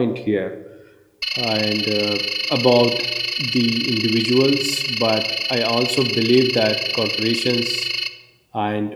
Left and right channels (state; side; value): identical; both; correlation 1.00